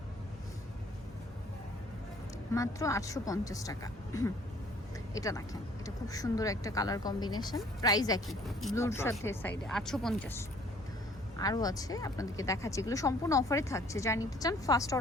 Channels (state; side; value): normal; both; correlation 0.57